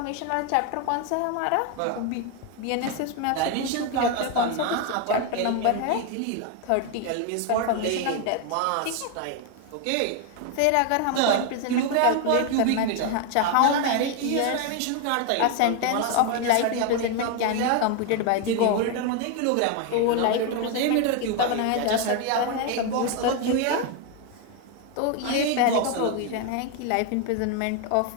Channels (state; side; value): different; both; correlation 0.01